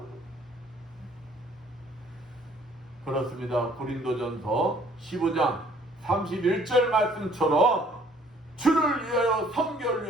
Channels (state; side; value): normal; both; correlation 0.59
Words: 그렇습니다. 고린도전서 15장 31절 말씀처럼 주를 위하여 선교를